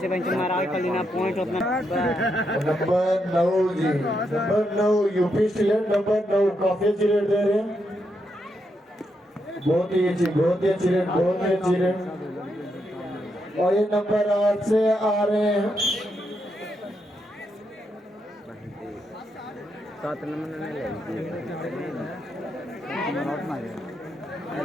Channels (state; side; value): normal; both; correlation 0.81